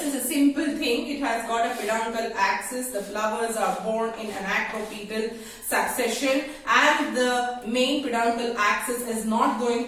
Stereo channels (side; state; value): both; identical; correlation 1.00